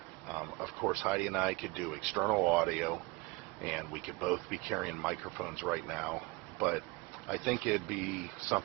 Of course, Heidi and I could do external audio, and we could both be carrying microphones right now, but I think it'd be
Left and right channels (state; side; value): quieter; left; 25.3 dB